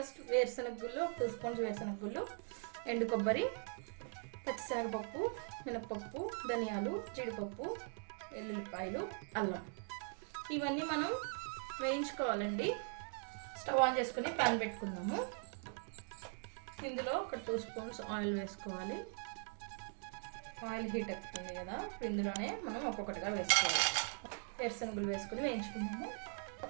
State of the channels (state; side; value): silent; left; 50 dB below the other